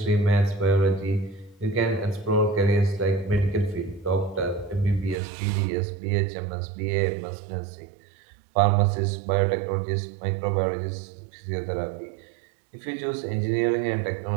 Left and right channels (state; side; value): drops out; left; at 5.2 s